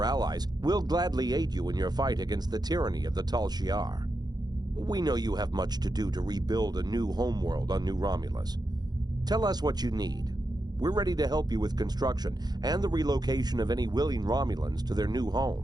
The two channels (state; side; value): late; left; 0.20 ms